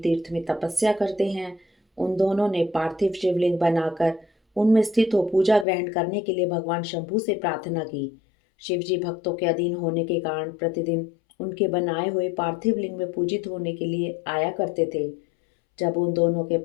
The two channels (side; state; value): right; drops out; at 5.7 s